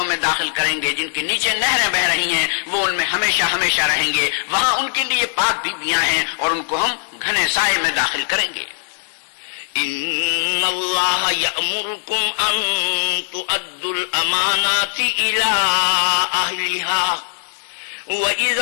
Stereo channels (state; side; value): silent; right; 66 dB below the other